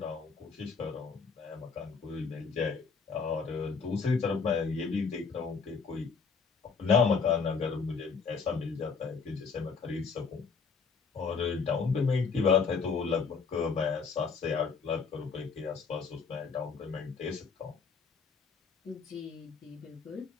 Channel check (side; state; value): right; quieter; 5.3 dB